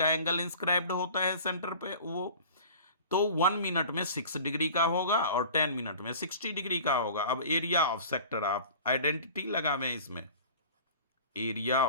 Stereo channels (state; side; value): inverted; both; correlation -0.41